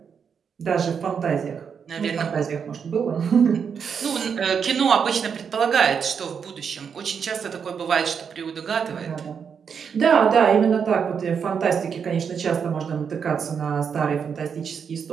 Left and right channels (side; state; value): left; quieter; 6.8 dB